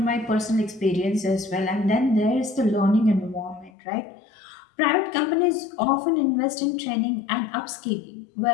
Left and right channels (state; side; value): drops out; right; at 3.7 s